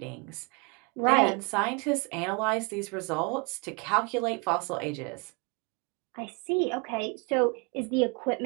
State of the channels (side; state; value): left; quieter; 30.9 dB